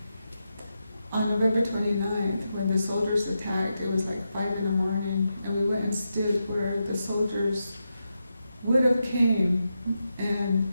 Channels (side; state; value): both; inverted; correlation -0.87